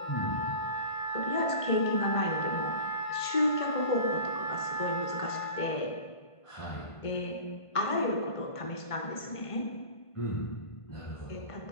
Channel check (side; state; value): right; late; 1.5 ms